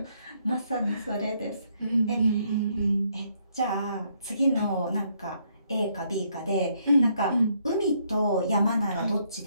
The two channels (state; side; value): inverted; both; correlation -0.71